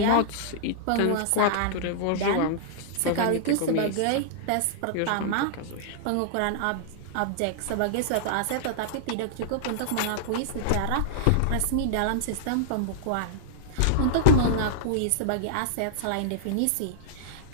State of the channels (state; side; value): different; both; correlation -0.01